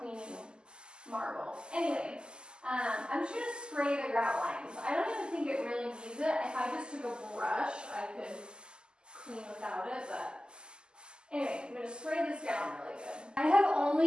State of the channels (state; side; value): late; left; 0.047 ms